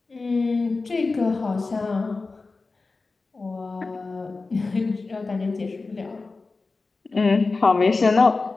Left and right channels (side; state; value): right; quieter; 3.8 dB